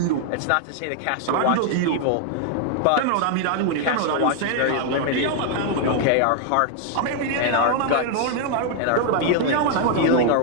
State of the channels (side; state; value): both; different; correlation 0.00